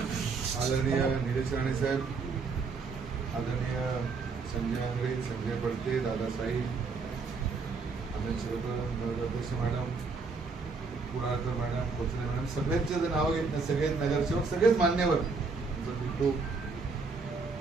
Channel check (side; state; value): left; quieter; 4.5 dB